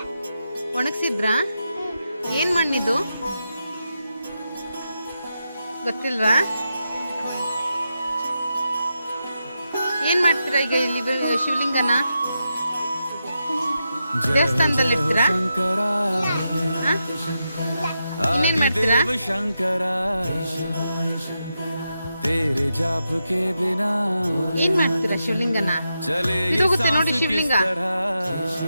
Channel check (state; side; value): inverted; both; correlation -0.87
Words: ಒಣಗ್ಸಿದ್ರಾ? ಏನ್ ಮಣ್ಣಿದು ಗೊತ್ತಿಲ್ವಾ? ಏನ್ ಮಾಡ್ತೀರಾ ಈಗ ಇಲ್ಲಿ ಶಿವಲಿಂಗನ? ದೇವಸ್ಥಾನದಲ್ಲಿ ಇರ್ತೀರಾ? ಇನ್ನೇನ್ ಮಾಡ್ತೀರಾ? ಏನ್ ಮಾಡ್ತೀರಾ ಶಿವಲಿಂಗನ? ಇದು ಹೋಗುತ್ತೆ ನೋಡಿ ಶಿವಲಿಂಗ.